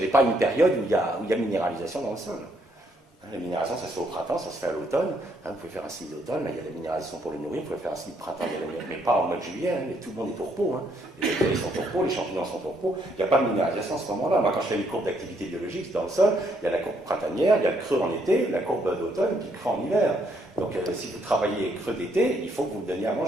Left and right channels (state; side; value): normal; both; correlation 0.71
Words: n'est pas une période où il y a minéralisation dans le sol. La minéralisation, ça se fait au printemps, ça se fait à l'automne. Vous pouvez faire un semis d'automne, il y a la minéralisation pour le nourrir, vous pouvez faire un semis de printemps, mais pas en mois de juillet, mais tout le monde est pour pot. Les bactéries sont pour pot, les champignons sont pour pot. Il n'y a pas de minéralisation à ce moment-là. Moi, quand je fais les courbes d'activité biologique dans le sol, il y a la courbe printanière, il y a le creux en été, la courbe d'automne, puis le creux en hiver. Donc, si vous travaillez creux d'été, il faut que vous le donniez à